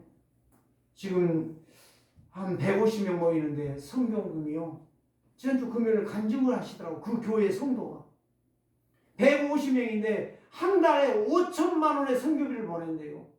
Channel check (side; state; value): both; identical; correlation 1.00